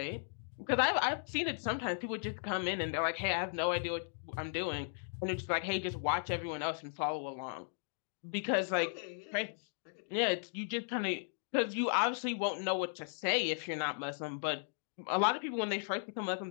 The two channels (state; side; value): silent; right; digital silence